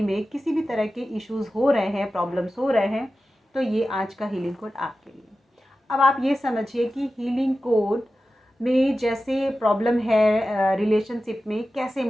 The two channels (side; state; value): both; normal; correlation 0.94